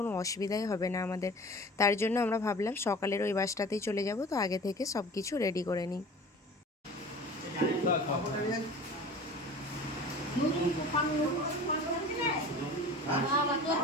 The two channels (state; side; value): normal; both; correlation 0.40